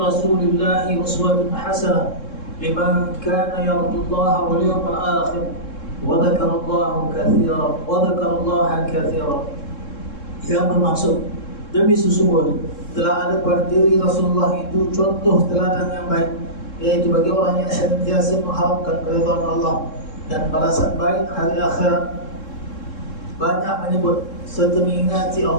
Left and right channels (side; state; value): right; late; 3.7 ms